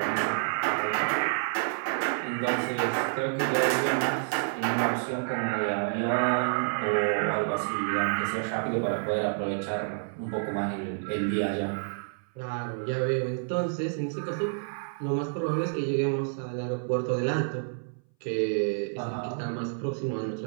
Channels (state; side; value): silent; left; 59 dB below the other